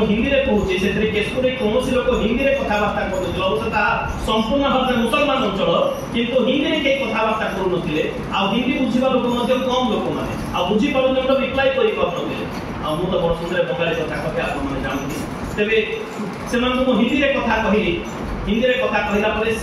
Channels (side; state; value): both; identical; correlation 1.00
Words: हिंदी रे कहूची सेतरे केशपुर रे कोनोसी लोक हिंदी रे कथा बार्ता करथि अवश्य संपूर्ण भाव मुसलमान अंचल किंतु हिंदी रे के कथा बार्ता करू नथिले आ हिंदी बुझिबा लोक मध्ये कम लोक माने आ बुझि पारु न रिप्लाई करि करथि आ मु तो बड़ सुंदर बंगाली कथा कहबे आपण माने जानथि तबे सेमान को हिंदी रे कथा कहिली हिंदी रे कथा कहिला परे